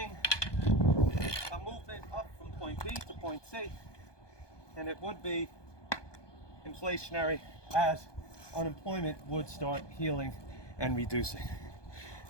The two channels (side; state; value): right; late; 1.2 ms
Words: a movement up from point B to point C, and it would be inflationary as unemployment would start healing and reducing.